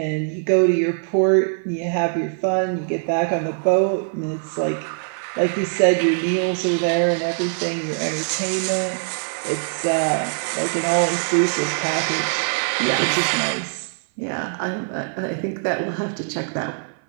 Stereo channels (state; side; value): silent; left; 56 dB below the other